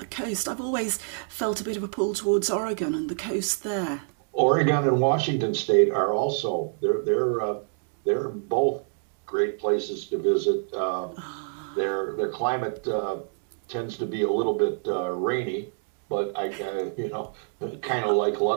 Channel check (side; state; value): left; silent; digital silence